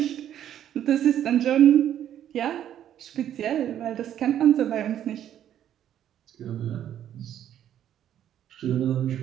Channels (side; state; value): left; quieter; 10.7 dB